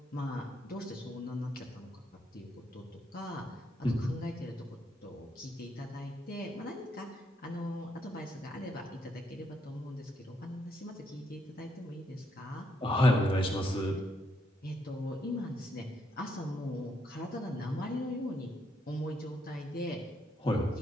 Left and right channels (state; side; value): normal; both; correlation 0.76